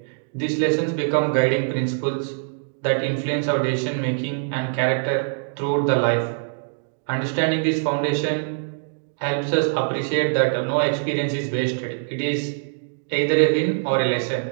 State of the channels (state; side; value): silent; left; digital silence